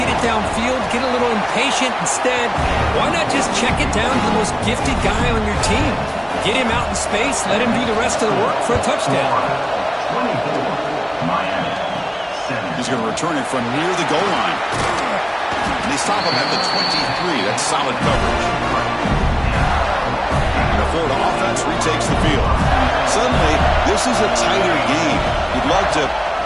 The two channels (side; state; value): both; identical; correlation 1.00